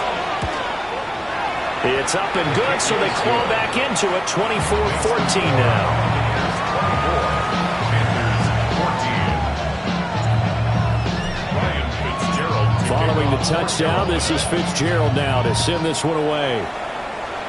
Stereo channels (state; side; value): identical; both; correlation 1.00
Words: It's up and good, so they claw back into it, 24-14 now. Following the touchdown, this is Fitzgerald now to send this one away.